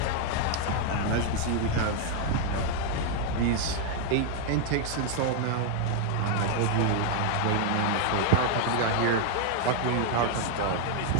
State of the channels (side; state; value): both; different; correlation 0.00